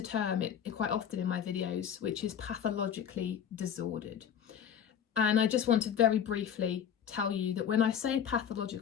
term quite often in my videos, which is pathologically disordered. And I just want to very briefly tell you that when I say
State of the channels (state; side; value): quieter; right; 8.5 dB